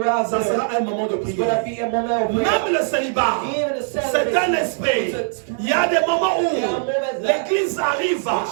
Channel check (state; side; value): silent; left; digital silence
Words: ça sera un moment de prière. Même le célibat, c'est un esprit. Il y a des moments où l'église arrive